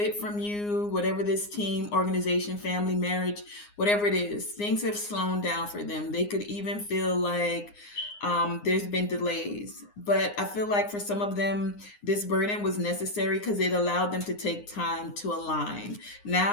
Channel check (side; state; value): right; late; 9.7 ms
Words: from you, whatever this team, organization, family, marriage, whatever it is, things have slowed down for them. They could even feel like there's been delays. But I feel like for some of them, this burden was necessary because it allowed them to take time to align.